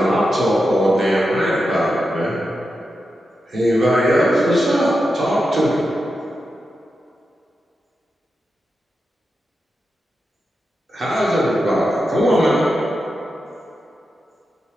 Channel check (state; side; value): normal; both; correlation 0.89